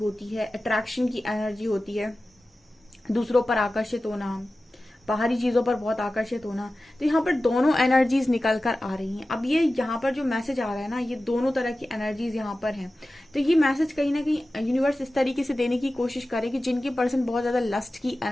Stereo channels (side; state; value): both; normal; correlation 0.95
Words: है, अट्रैक्शन की एनर्जी होती है, दूसरों पर आकर्षित होना, बाहरी चीजों पर बहुत आकर्षित होना। तो यहाँ पर दोनों एनर्जीज निकल कर आ रही हैं। अब ये यहाँ पर जो मैसेज आ रहा है ना, ये दोनों तरह की एनर्जीज यहाँ पर हैं। तो ये मैसेज कहीं ना कहीं यूनिवर्स इस तरीके से देने की कोशिश करे कि जिनके पर्सन बहुत ज्यादा लस्ट की